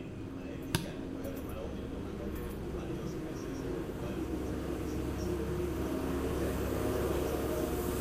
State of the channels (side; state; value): both; identical; correlation 1.00